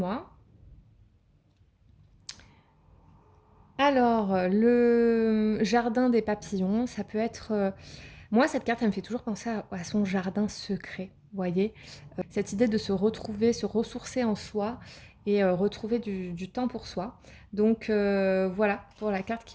Alors, le jardin des papillons, ça peut être... moi, cette carte, elle me fait toujours penser à son jardin secret, vous voyez? Cette idée de se retrouver, se ressourcer en soi et retrouver du temps pour soi. Donc voilà, pour la carte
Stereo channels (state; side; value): identical; both; correlation 1.00